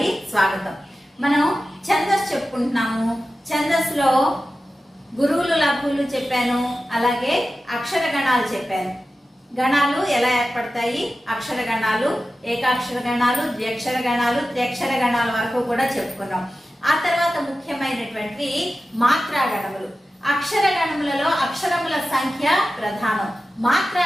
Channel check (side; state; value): both; normal; correlation 0.93